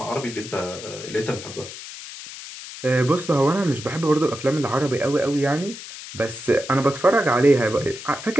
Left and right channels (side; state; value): left; noise; hiss, 12 dB below the sound